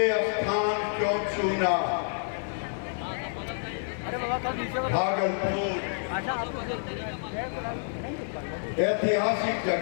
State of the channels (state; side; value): silent; right; digital silence